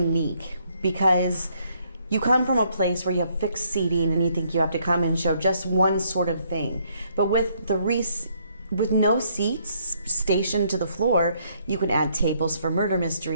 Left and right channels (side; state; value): both; inverted; correlation -0.70